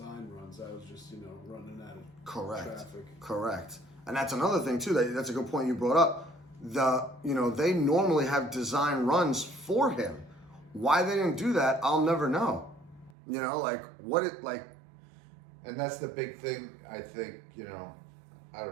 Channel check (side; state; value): left; drops out; at 13.1 s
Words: runs. That was just running out of traffic. Correct. And that's another thing too. That's a good point you brought up. They normally have design runs for him. Why they didn't do that, I'll never know. And that's the big thing, I think, I